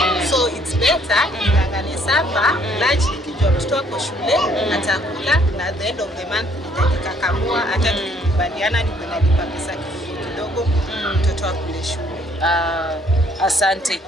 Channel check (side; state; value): both; normal; correlation 0.64